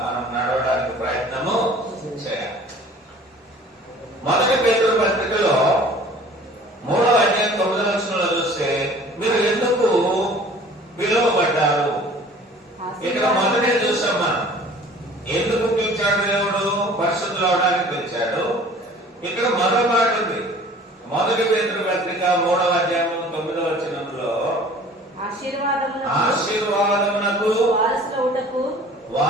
మనం నడవడానికి ప్రయత్నము చేయాలి. మొదటి పేతురు పత్రికలో 3వ అధ్యాయం 9వ వచనంలో చూస్తే, మీరు ఎందుకు పిలువబడ్డారు? ఇక్కడ మొదటే చూసాం మనం. ఎందుకు పిలిచాడు దేవుడు? పరిశుద్ధులు అవడానికి పిలిచాడు. ఇక్కడ మరో మాట ఉంది. మొదటి పేతురు పత్రిక 3వ అధ్యాయం 9వ వచనంలో, ఆశీర్వాదమునకు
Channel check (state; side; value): normal; both; correlation 0.48